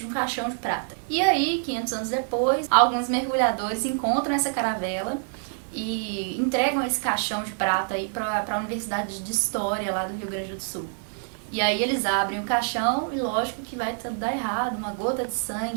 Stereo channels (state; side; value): silent; left; digital silence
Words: um caixão de prata. E aí, 500 anos depois, alguns mergulhadores encontram essa caravela e entregam esse caixão de prata aí para a Universidade de História lá do Rio Grande do Sul. E aí eles abrem o caixão e lógico que vai dar errado, uma gota de